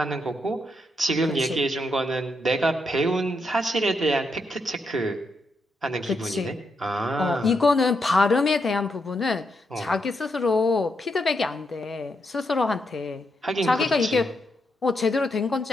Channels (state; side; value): normal; both; correlation 0.81